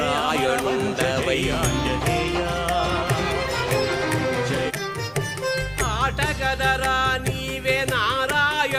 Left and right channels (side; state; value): both; identical; correlation 1.00